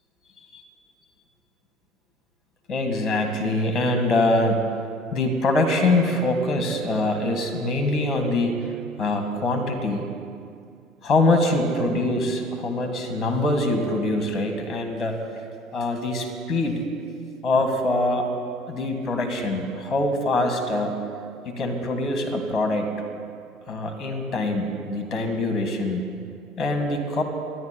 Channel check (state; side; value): normal; both; correlation 0.52